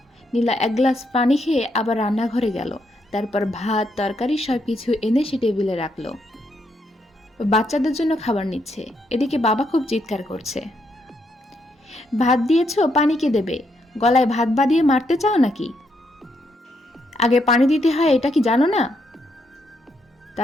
নীলা 1 গ্লাস পানি খেয়ে আবার রান্নাঘরে গেল। তারপর ভাত তরকারি সব কিছু এনে সে টেবিলে রাখলো। বাচ্চাদের জন্য খাবার নিচ্ছে। এদিকে বাবা খুব চিৎকার করছে, ভাত দিয়েছো, পানি কে দেবে? গলায় ভাত বাঁধিয়ে মারতে চাও নাকি? আগে পানি দিতে হয়, এটা কি জানো না?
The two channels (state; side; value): normal; both; correlation 0.77